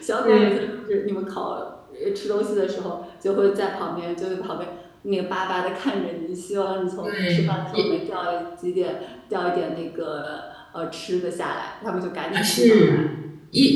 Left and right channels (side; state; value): both; identical; correlation 1.00